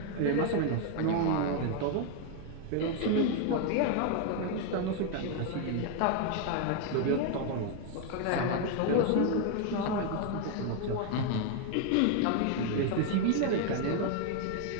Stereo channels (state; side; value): different; both; correlation 0.01